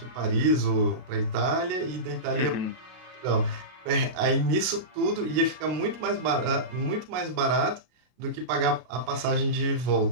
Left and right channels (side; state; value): left; late; 33 ms